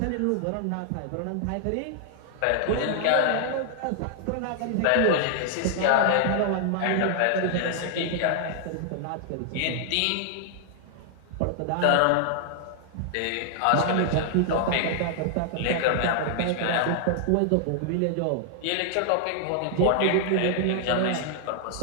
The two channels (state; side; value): different; both; correlation -0.01